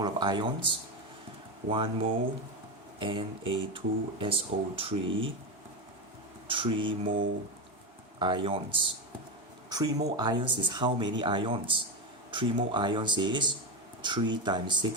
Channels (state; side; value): normal; both; correlation 0.15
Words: of ions? 1 mole Na2SO3, 3 mole ions. 3 mole ions is how many ions? 3 mole ions is 3 times